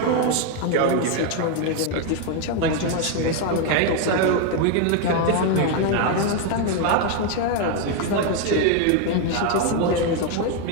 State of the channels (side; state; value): both; different; correlation 0.01